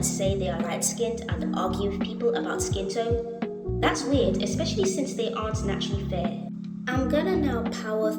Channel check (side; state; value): both; identical; correlation 1.00